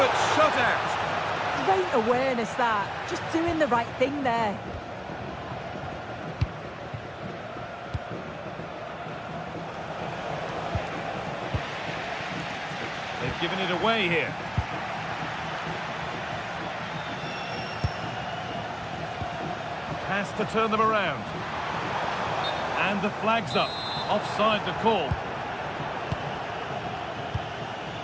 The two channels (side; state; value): both; identical; correlation 1.00